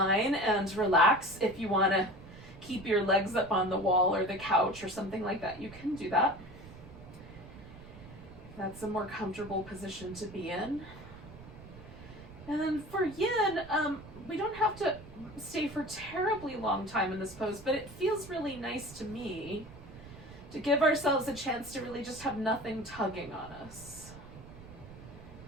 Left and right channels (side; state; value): right; noise; rumble, 17 dB below the sound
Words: and relax. If you want to keep your legs up on the wall or the couch or something like that, you can do that. That's a more comfortable position to be in. And then for Yin, we don't have to stay for terribly long time in this pose, but it feels really nice to me to give ourselves a chance to really just have nothing tugging on us.